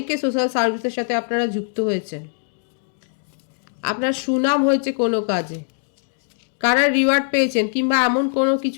সোশ্যাল সার্ভিসের সাথে আপনারা যুক্ত হয়েছেন, আপনার সুনাম হয়েছে কোনো কাজে, কারা রিওয়ার্ড পেয়েছেন, কিংবা এমন কোনো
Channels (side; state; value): right; silent; digital silence